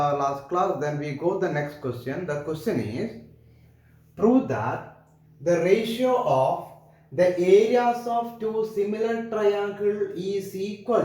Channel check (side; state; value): both; identical; correlation 1.00